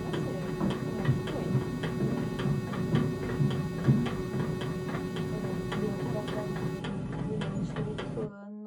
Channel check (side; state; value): both; identical; correlation 1.00